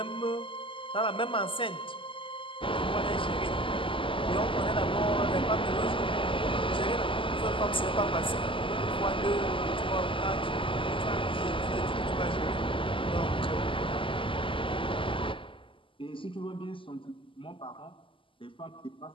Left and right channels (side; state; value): right; late; 0.25 ms